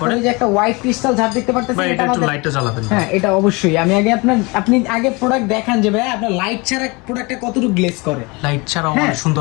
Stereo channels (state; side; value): quieter; right; 26.7 dB